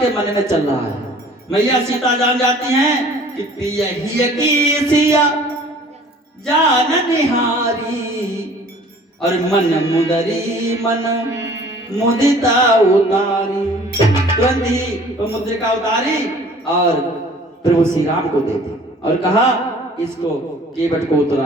मन में चल रहा है। मैया सीता जान जाती हैं कि पिया ही की सिया जान निहारी, और मन मुदरी मन मुदिता उतारी। तुरंत ही वो मुद्रिका उतारी और प्रभु श्री राम को दे दी और कहा इसको केवट को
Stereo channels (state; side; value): normal; both; correlation 0.50